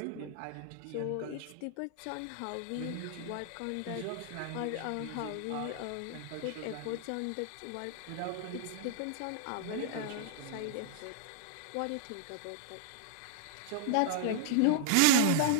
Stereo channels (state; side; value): different; both; correlation -0.01